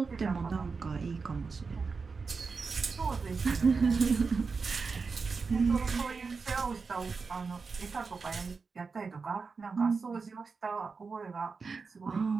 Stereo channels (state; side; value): quieter; left; 4.8 dB